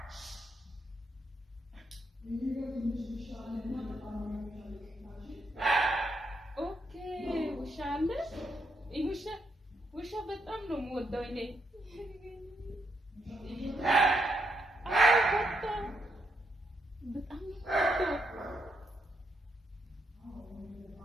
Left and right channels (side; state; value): both; normal; correlation 0.79